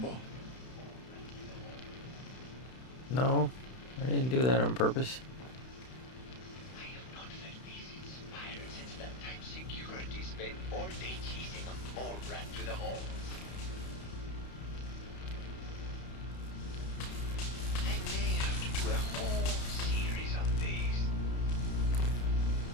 No, I didn't do that on purpose. I have not felt this inspired since that time security spent all day chasing a mole rat through the halls. I may have to do a whole series on these.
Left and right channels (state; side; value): late; right; 31 ms